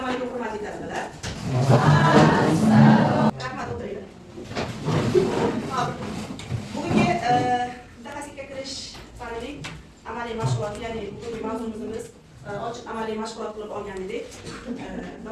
alaykum hurmatli talabalar. Rahmat, o'tiringlar. Hop. Bugungi mutaxassislikka kirish fanining amaliy mashg'uloti, ya'ni bugungi mavzumiz ochiq amaliy mashg'ulot qilib olgan edik.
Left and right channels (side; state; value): both; identical; correlation 1.00